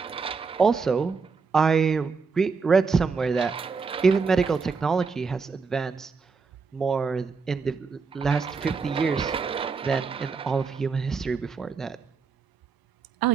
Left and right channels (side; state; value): left; quieter; 5.0 dB